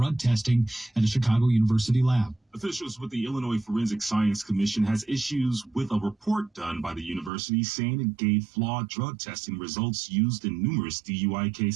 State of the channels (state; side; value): drops out; left; at 7.3 s